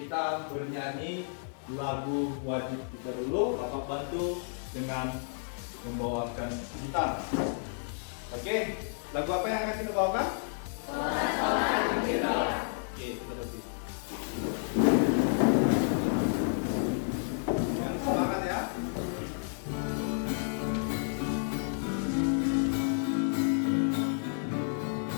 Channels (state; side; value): silent; right; digital silence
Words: bernyanyi lagu wajib kita dulu. Bapak bantu dengan membawakan gitar. Oke, lagu apa yang akan kita bawakan? Oke, kita berhenti. Yang semangat ya.